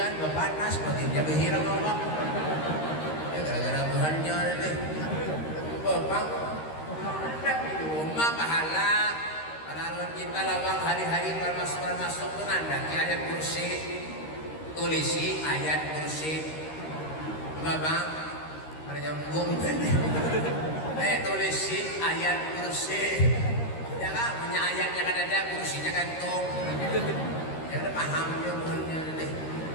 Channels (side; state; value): right; late; 13 ms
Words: panas, baginda berhiram Allah. Ya gara-gara Tuhannya nih. Bapak, di rumah pahala. Kalau kita lawang hari-hari masuk tuh nanda ayat kursi, tulisi ayat kursi. Bapak. Ada nyambung kan? Tulisi ayat kursi. Ya kan, punya ayatnya kan ada, kursinya gantung. Ya udah paham dia bukannya nih.